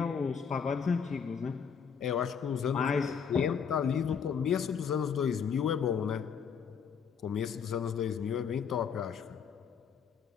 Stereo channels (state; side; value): quieter; right; 6.9 dB